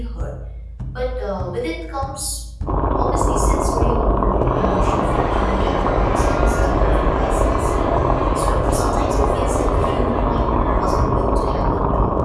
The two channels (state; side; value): identical; both; correlation 1.00